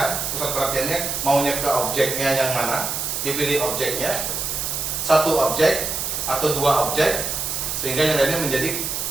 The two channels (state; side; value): noise; right; hiss, 2 dB below the sound